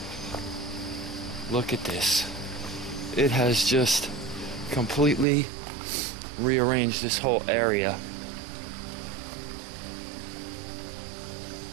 Look at this. It has just completely rearranged this whole area.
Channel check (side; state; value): left; drops out; at 5.2 s